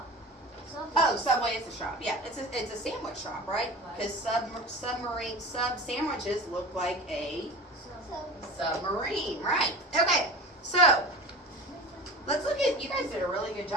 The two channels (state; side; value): normal; both; correlation 0.34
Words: Subway. Oh, Subway is a shop. Yeah, it's a sandwich shop, right? Because submarine sub sandwiches look like a submarine, right? Okay, so let's look at. You guys did a really good